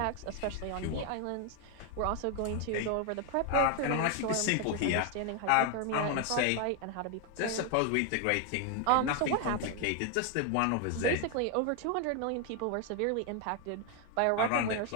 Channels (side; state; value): both; different; correlation 0.01